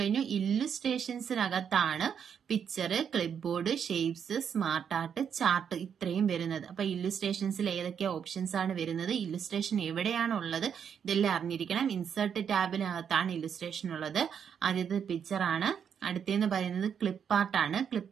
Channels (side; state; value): left; quieter; 7.7 dB